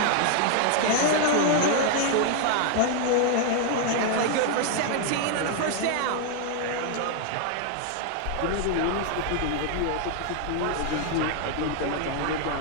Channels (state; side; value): different; both; correlation 0.00